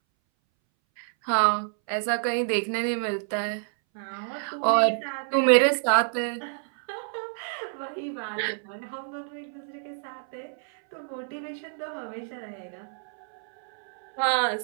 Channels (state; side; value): silent; left; 60 dB below the other